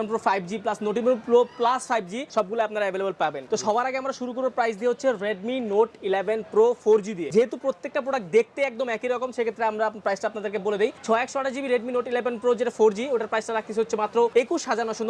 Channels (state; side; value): identical; both; correlation 1.00